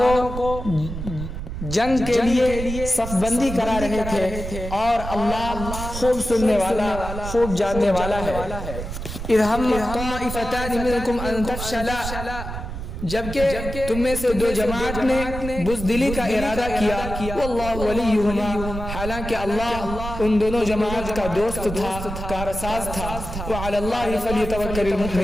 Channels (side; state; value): right; noise; rumble, 7 dB below the sound